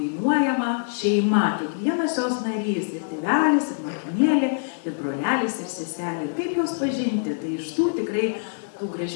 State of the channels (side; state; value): right; silent; digital silence